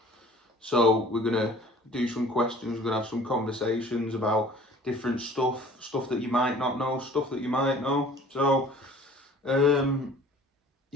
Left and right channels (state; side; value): normal; both; correlation 0.49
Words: So we're going to do some questions, we're going to have some conversations about different stuff that you might not know, stuff that you might know.